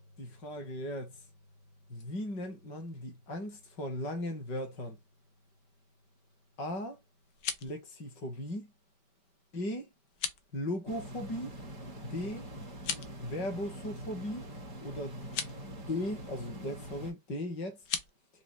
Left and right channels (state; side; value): late; right; 5.1 ms